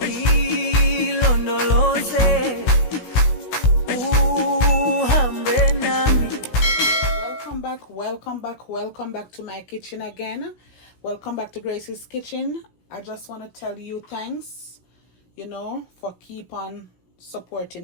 ilondoloze uhambe nami. Welcome back to my kitchen again. Welcome back to Grace's Kitchen. I just want to tell you thanks, for keep on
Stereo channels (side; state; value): right; late; 16 ms